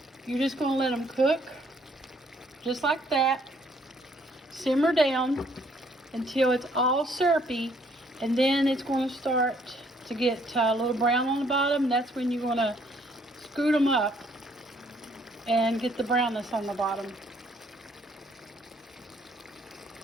you're just going to let them cook just like that. Simmer down until it's all syrupy, and then it's going to start to get a little brown on the bottom. That's when you're going to scoot them up and get the brownness on the bottom.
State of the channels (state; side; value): normal; both; correlation 0.65